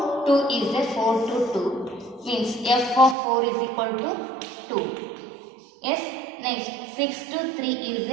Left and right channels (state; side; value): drops out; left; at 3.2 s